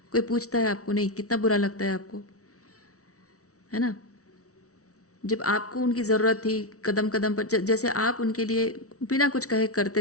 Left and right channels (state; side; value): late; right; 0.65 ms